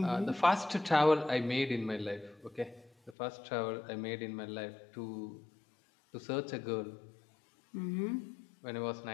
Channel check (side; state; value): right; drops out; at 3.2 s